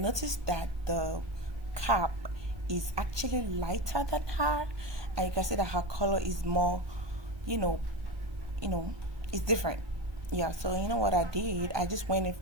that the cap is actually lighter than her, and you can see that her color is more, you know, it's different. Yeah, so you know what I did? I just went in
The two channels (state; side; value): late; left; 1.2 ms